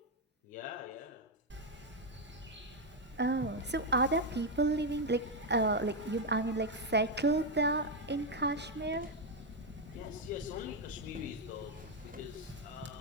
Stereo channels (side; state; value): both; normal; correlation 0.04